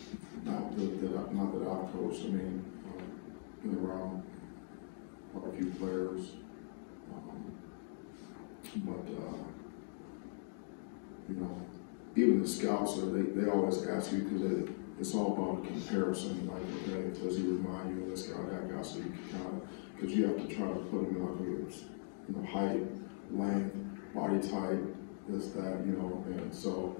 not that I've coached. I mean, been around quite a few players, but you know, even the scouts, they always ask you because it's all about a comparison. Like, okay, does he remind you of this guy, that guy? So you can kind of, because you have to try to put him in like a height, length, body type, this, that, you know. And so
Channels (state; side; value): silent; right; digital silence